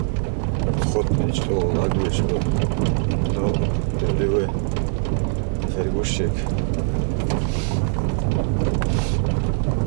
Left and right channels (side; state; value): left; silent; 60 dB below the other